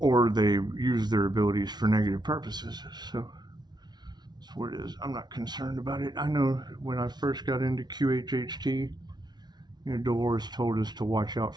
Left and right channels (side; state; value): left; late; 0.20 ms